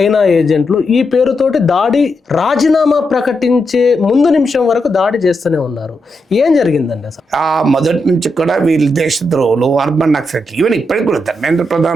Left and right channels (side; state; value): both; normal; correlation 0.84